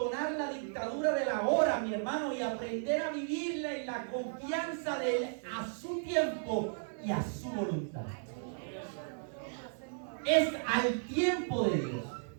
la dictadura de la hora, mi hermano, y aprender a vivirla en la confianza de Él a su tiempo y a su voluntad. Es al tiempo de Dios,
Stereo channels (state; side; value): silent; left; digital silence